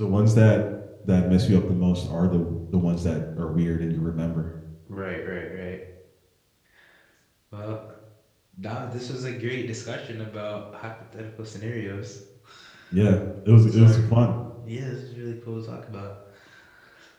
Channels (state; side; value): identical; both; correlation 1.00